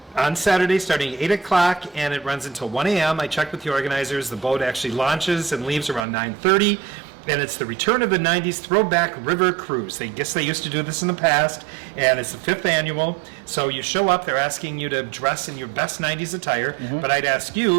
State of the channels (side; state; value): left; drops out; at 6.1 s